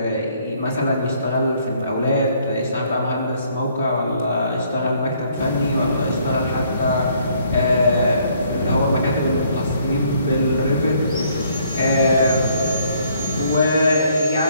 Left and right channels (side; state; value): both; inverted; correlation -0.65